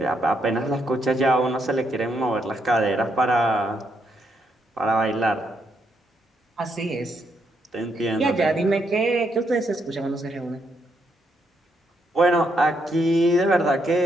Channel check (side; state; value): both; normal; correlation 0.77